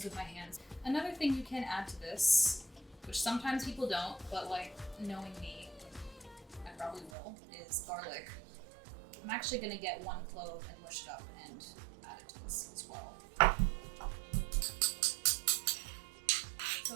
with my hands. Another thing you can add to this, which sometimes people don't, but like knowing me, I probably will, is garlic. I'm actually gonna get 1 clove and mush it up and add it to this as well.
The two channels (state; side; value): drops out; left; at 7.1 s